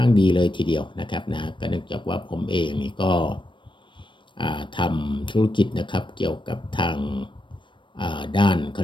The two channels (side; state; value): right; late; 0.24 ms